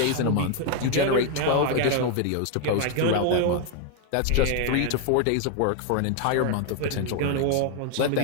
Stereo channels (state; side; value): different; both; correlation 0.01